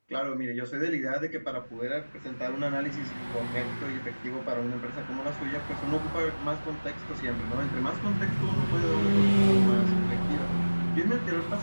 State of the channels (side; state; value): both; inverted; correlation -1.00